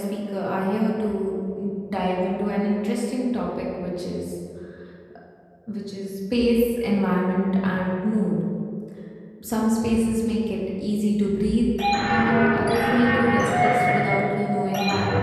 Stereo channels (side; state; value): both; identical; correlation 1.00